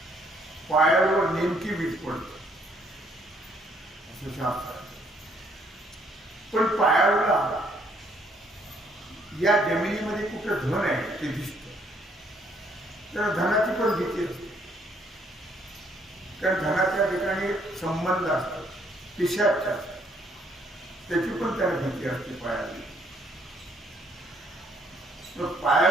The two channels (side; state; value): both; normal; correlation 0.67